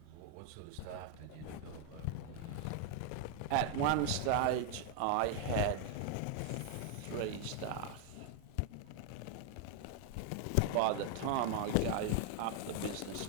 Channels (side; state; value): both; different; correlation 0.01